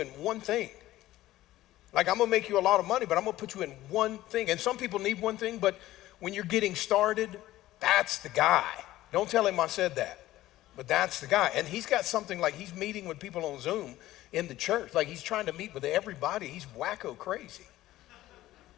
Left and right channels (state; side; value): quieter; right; 15.4 dB